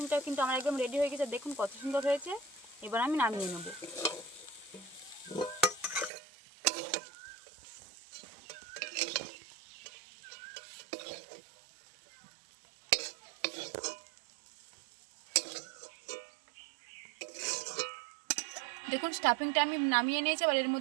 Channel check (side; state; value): left; drops out; at 6.1 s